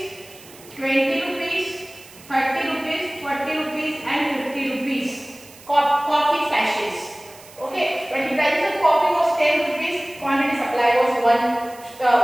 20 rupees, 30 rupees, 40 rupees and 50 rupees. Coffee sachets.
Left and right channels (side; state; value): right; noise; hiss, 21 dB below the sound